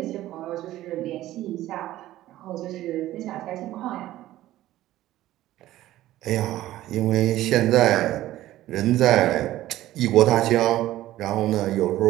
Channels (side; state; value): left; quieter; 14.8 dB